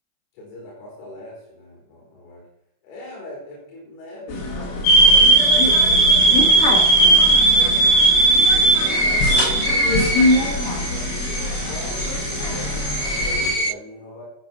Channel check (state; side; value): late; right; 28 ms